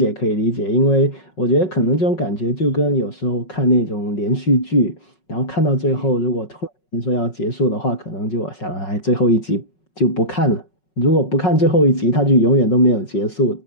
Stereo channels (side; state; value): right; late; 5.4 ms